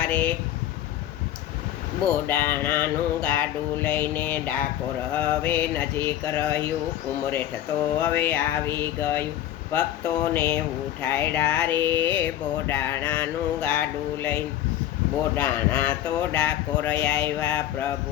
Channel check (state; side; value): quieter; right; 12.3 dB